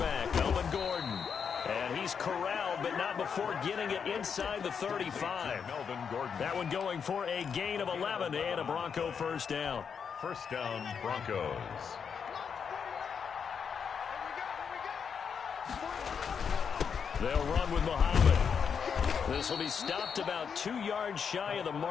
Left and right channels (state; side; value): quieter; right; 6.7 dB